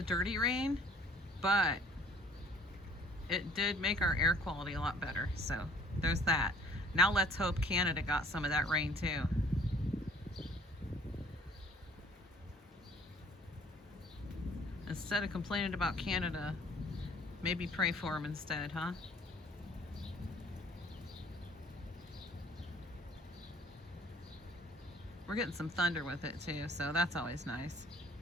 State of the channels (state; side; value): normal; both; correlation 0.56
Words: dirty rain, but it did make our air quality a lot better. So there's that. Now let's hope Canada got some of that rain too. Instead of complaining about Canada, maybe pray for them instead, huh? We're getting some thunder with it too, so that's always nice.